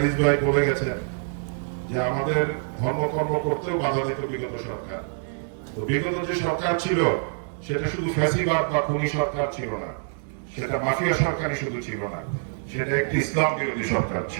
ভাই বলে গেছেন যে আমাদের ধর্মকর্ম করতেও বাধা দিত বিগত সরকার। তো বিগত যে সরকার ছিল সেটা শুধু ফ্যাসিবাদ বা খুনি সরকার ছিল না, সেটা মাফিয়া সরকারই শুধু ছিল না, সেটা একটি ইসলাম বিরোধী সরকার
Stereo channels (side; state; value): left; silent; digital silence